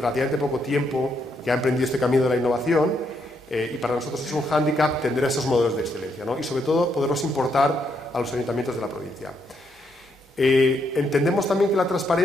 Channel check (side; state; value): both; normal; correlation 0.76